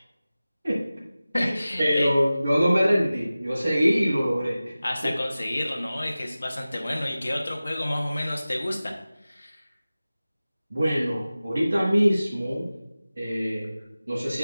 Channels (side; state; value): both; inverted; correlation -0.96